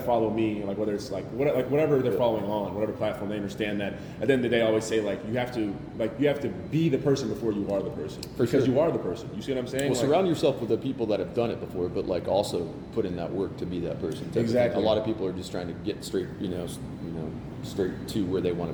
follow me, like whether it's like whatever they're following on, whatever platform, they understand that. At the end of the day, I always say like you have to be the person before you are the person, because you are the person. You see what I'm saying? Well, surround yourself with the people that have done it before, but like also put in that work to be that person. Exactly. A lot of people are just trying to get straight, straight to where they want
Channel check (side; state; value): both; identical; correlation 1.00